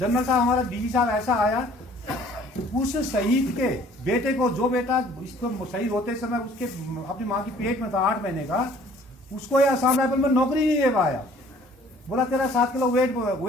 साहब हमारा डीजी साहब ऐसा आया, उस शहीद के बेटे को, जो बेटा इसको शहीद होते समय उसके अपनी माँ की पेट में था 8 महीने का, उसको ये असम राइफल में नौकरी नहीं दे पाया। बोला तेरा 7 किलो वेट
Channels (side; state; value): both; normal; correlation 0.55